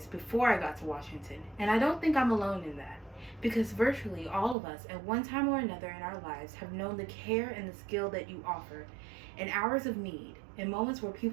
before I got to Washington, and I don't think I'm alone in that, because virtually all of us at one time or another in our lives have known the care and the skill that you offer in hours of need, in moments where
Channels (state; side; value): drops out; left; at 4.5 s